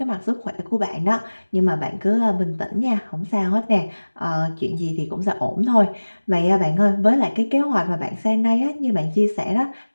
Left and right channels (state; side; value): inverted; both; correlation -1.00